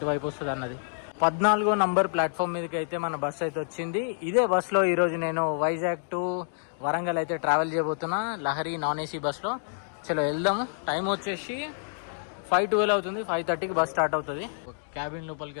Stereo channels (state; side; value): silent; right; digital silence